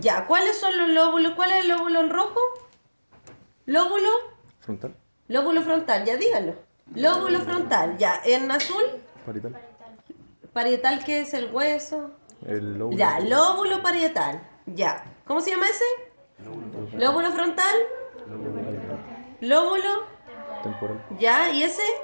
¿cuáles son los lóbulos? ¿Cuál es el lóbulo en rojo? Lóbulo, Frontal. lóbulo frontal, ya díganlo. Lóbulo frontal, ya, en azul, Parietal. parietal, ¿qué es el hueso? El lóbulo. Ya, lóbulo parietal, ya. ¿Cómo se llama ese? Lóbulo frontal, lóbulo, Temporal. ya, ¿y ese?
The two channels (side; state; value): both; inverted; correlation -1.00